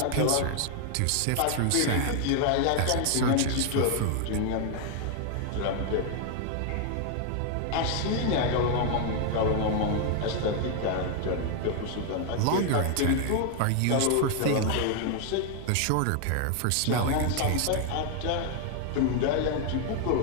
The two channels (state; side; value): different; both; correlation 0.00